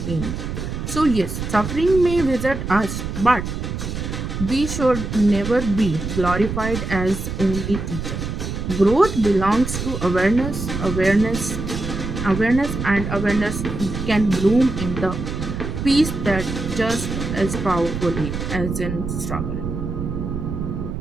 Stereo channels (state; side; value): noise; right; rumble, 5 dB below the sound